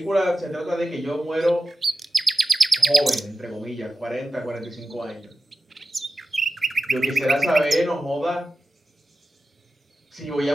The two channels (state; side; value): normal; both; correlation 0.92